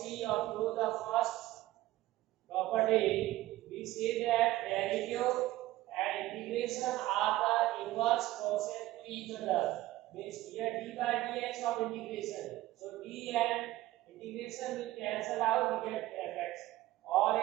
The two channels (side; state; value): left; quieter; 16.3 dB